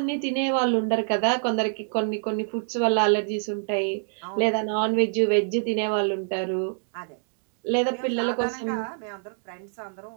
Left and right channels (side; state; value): left; silent; digital silence